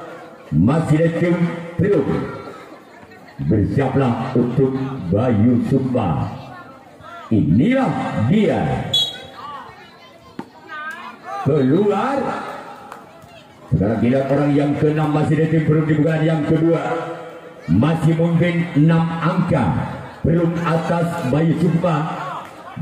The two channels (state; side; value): identical; both; correlation 1.00